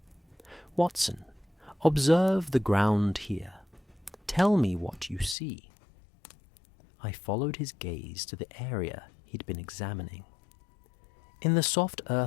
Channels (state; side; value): drops out; right; at 5.4 s